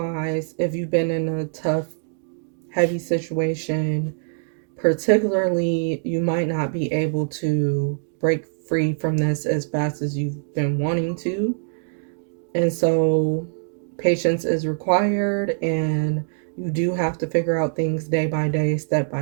if you've been in a tough, heavy situation, particularly, you might not be able to break free from this as fast as you've been wanting to. And so patience is required, and you do have to figure out things day by day, step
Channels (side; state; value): left; silent; digital silence